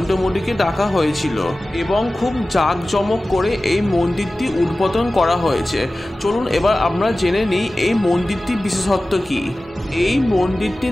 মোদীকে ডাকা হয়েছিল এবং খুব জাঁকজমক করে এই মন্দিরটি উদ্বোধন করা হয়েছে। চলুন এবার আমরা জেনে নিই এই মন্দিরটির বিশেষত্ব কী। এই মন্দিরটি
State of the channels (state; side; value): normal; both; correlation 0.96